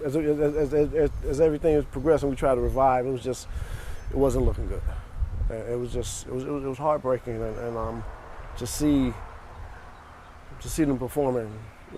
as everything was progressing, we tried to revive. It wasn't looking good. It was heartbreaking, and to see them performing,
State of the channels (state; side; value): identical; both; correlation 1.00